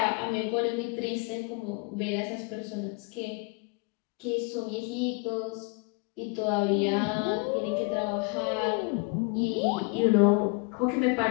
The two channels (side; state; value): right; quieter; 30.1 dB